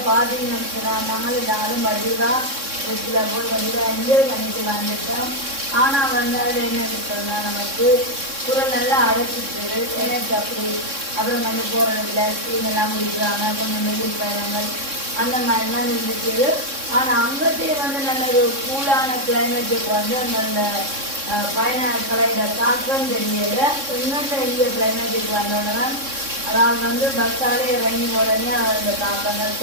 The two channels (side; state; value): left; late; 3.6 ms